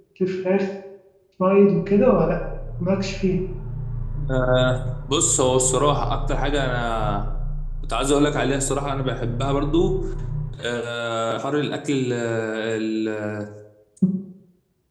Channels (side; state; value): both; identical; correlation 1.00